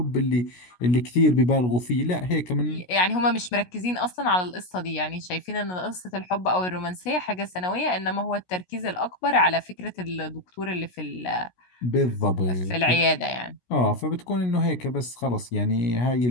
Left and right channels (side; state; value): right; late; 16 ms